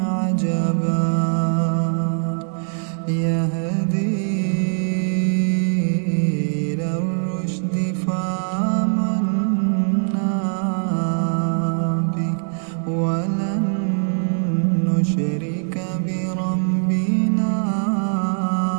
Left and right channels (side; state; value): left; silent; 65 dB below the other